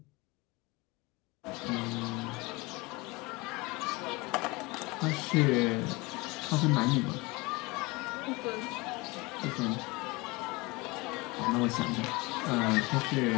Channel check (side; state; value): right; quieter; 24.3 dB